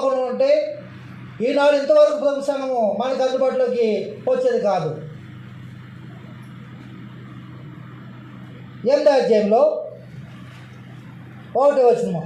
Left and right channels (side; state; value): both; identical; correlation 1.00